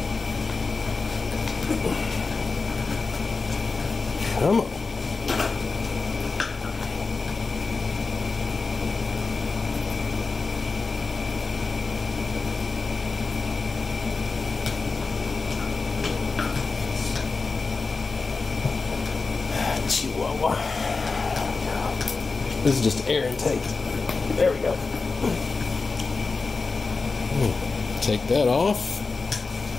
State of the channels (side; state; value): right; quieter; 4.2 dB